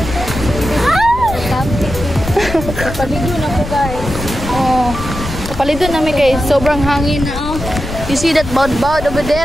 Kapalido na po guys. Oh. Kapalido namin guys. Sobrang hangin na oh. You see that boud over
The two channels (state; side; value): noise; left; rumble, 9 dB below the sound